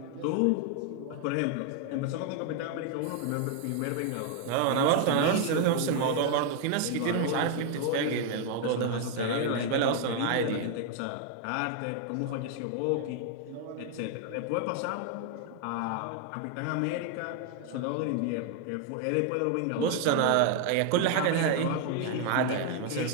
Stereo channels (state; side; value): different; both; correlation 0.00